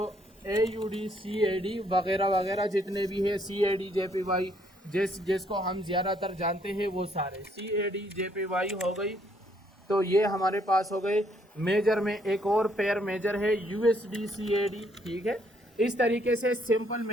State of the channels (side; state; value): both; normal; correlation 0.68